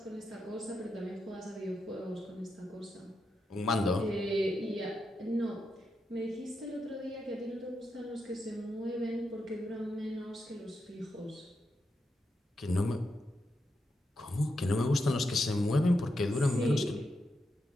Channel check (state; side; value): normal; both; correlation 0.85